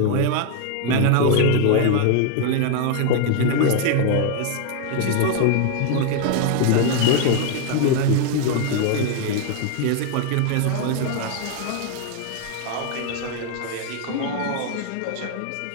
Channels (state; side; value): different; both; correlation 0.00